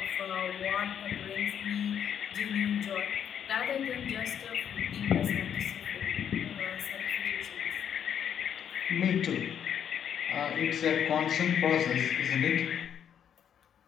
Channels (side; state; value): right; quieter; 8.8 dB